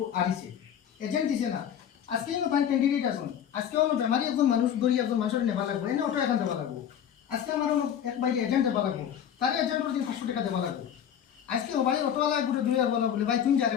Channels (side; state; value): right; quieter; 9.2 dB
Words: আরিছে এজেন্ট দিছে না আজকে ফাইন ক্যান্ডিডেট আছেন আজকে অন্য বেমারি একজন মানুষ ধরি একজন মানুষের নেবা লাগবো এনে অটো এখান দেওয়া লাগবো আজকে আমার এক বাইরে এজেন্ট দেওয়া লাগবো তার এজেন্টের দিন 500 টাকা দেওয়া লাগবো আজকে ওবারে অটোওয়ালা গোটে 2000 বলে ভাই তুমি যাবে